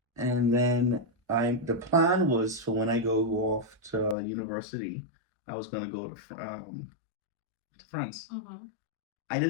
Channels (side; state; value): right; drops out; at 4.2 s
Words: And then the plan was for when I go off to university, I was gonna go to France. Mm-hmm. I